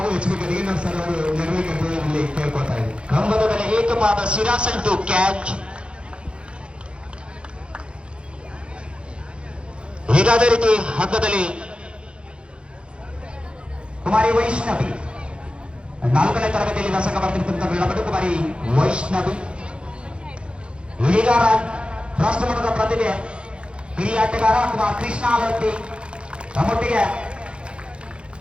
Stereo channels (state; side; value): late; left; 0.057 ms